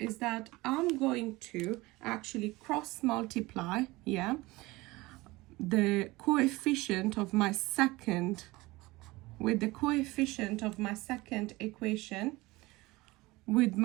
that I'm going to actually cross multiply, the coefficient of my second with the coefficient of my second equation with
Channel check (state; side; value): quieter; left; 21.0 dB